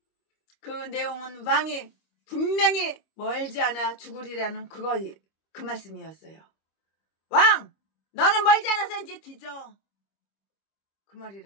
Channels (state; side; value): late; right; 25 ms